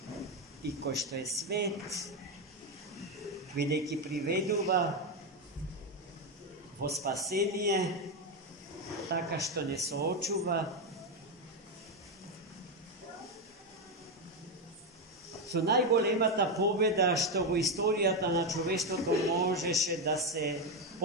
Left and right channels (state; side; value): normal; both; correlation 0.08